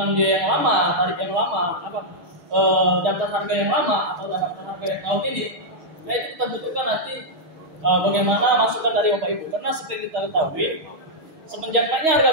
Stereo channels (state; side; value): late; left; 6.4 ms